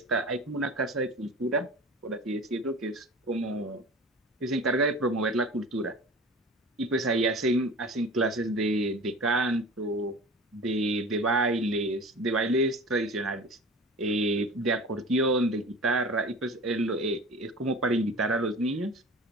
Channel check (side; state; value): both; normal; correlation 0.38